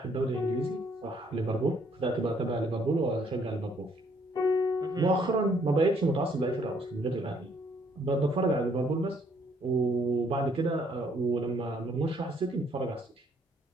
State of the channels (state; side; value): normal; both; correlation 0.66